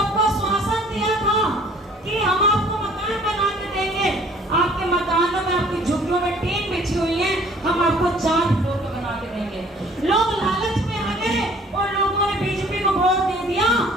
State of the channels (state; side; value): normal; both; correlation 0.55